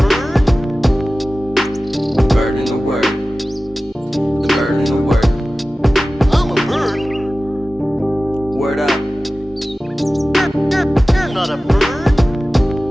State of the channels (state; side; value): normal; both; correlation 0.96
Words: Bird in the word. The bird in the word. I'm a bird. Word up. You're not a bird.